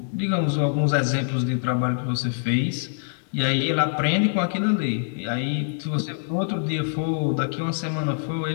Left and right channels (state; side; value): silent; right; 62 dB below the other